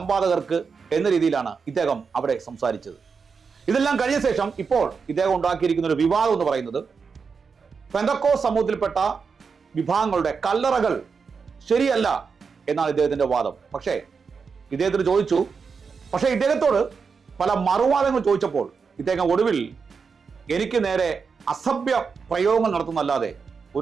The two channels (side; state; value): left; quieter; 5.5 dB